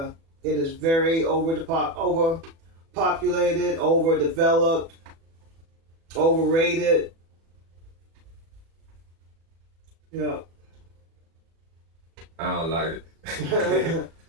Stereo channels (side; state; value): left; late; 36 ms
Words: It is very overpopulated, overdeveloped, overrated. Yeah. I don't like it.